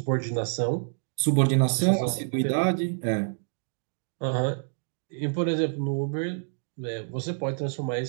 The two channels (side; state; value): left; silent; digital silence